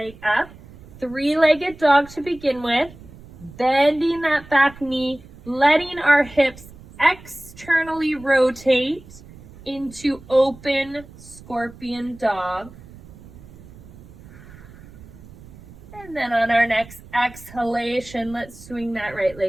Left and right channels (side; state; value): right; noise; rumble, 20 dB below the sound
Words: up, three-legged dog to begin with, bending that back knee, letting our hips externally rotate into open scorpion dog. And then on our next exhalation, let's swing that right